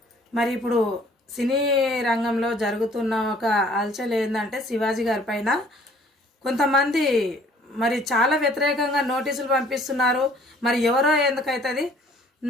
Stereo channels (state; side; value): normal; both; correlation 0.57